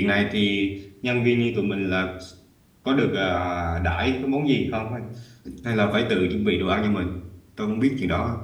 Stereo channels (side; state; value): both; identical; correlation 1.00